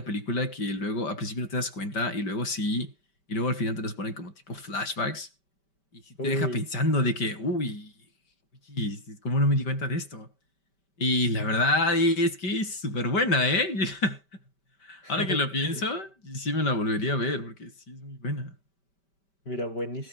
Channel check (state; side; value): late; right; 5.1 ms